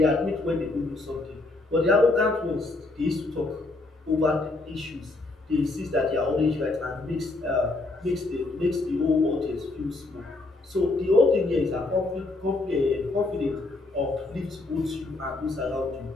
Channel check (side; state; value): right; quieter; 3.1 dB